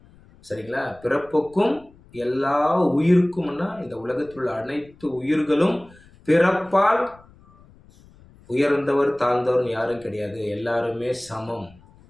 சரிங்களா? பிறப்புக்கும் எல்லா உயிருக்கும்னா, இந்த உலகத்தில் உள்ள அனைத்து உயிர்களும் பிறப்பால் உயர்ந்தவர் தாழ்ந்தவர் யாரும் கிடையாது, எல்லாருமே சமம்.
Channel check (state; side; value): noise; left; rumble, 26 dB below the sound